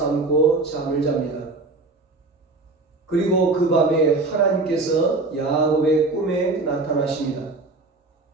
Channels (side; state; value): left; quieter; 3.4 dB